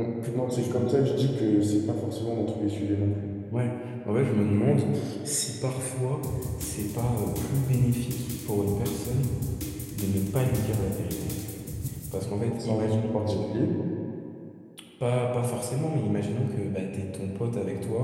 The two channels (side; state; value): both; identical; correlation 1.00